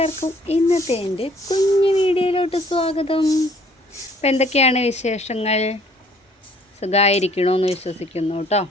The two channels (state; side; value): normal; both; correlation 0.59